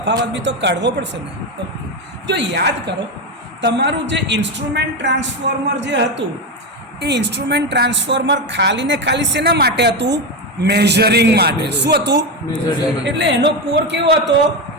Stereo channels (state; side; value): normal; both; correlation 0.13